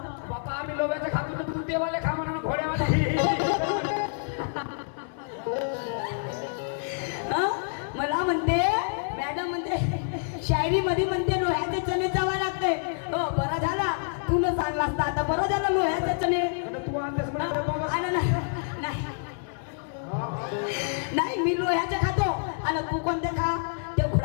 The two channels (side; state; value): right; silent; digital silence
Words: बाबा आम्ही लोकांच्या खातो तर तू देवाले खा म्हणा घोड्यावाले. हा? मला म्हणते मॅडम म्हणते शायरी मध्ये म्हणते लोह्याचे चणे चावा लागते. हो बरा झाला तुला सांगला असता, आता बरं झालं लोह्याचे चणे. आणि तू आणतेस म्हणा बाबा. आणि नाही नाही, मी लोह्याचे खातो आणि तू कोणते खा, ते